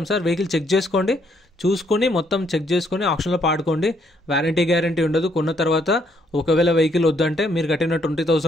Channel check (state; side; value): normal; both; correlation 0.70